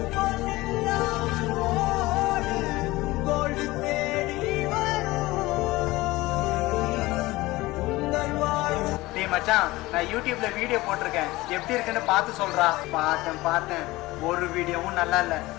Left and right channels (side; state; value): right; quieter; 19.6 dB